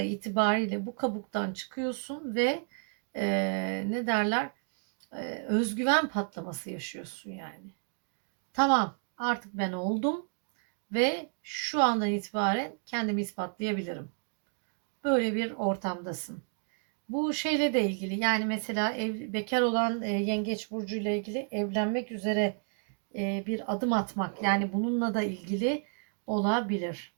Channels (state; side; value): silent; left; 57 dB below the other